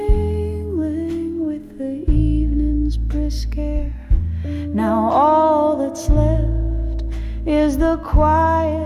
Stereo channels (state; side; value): identical; both; correlation 1.00